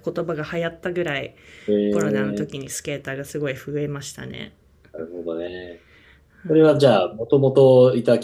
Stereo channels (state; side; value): identical; both; correlation 1.00